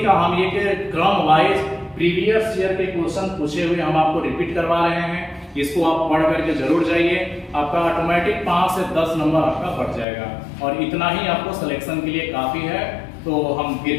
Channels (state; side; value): drops out; right; at 10.1 s